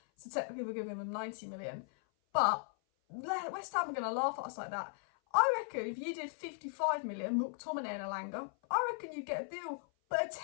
So technically we're giving them 90 million. But West Ham are going to laugh at us like that. I reckon if you did 55 million, McTominay and Elanga, I reckon you'd get a deal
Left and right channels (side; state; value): right; silent; 53 dB below the other